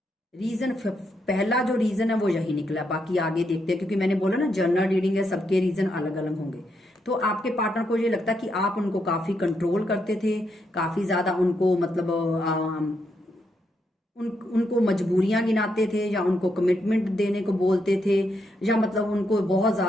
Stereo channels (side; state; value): both; normal; correlation 0.80